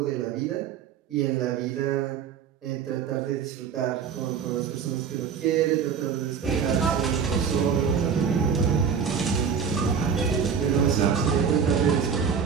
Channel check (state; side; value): quieter; left; 6.8 dB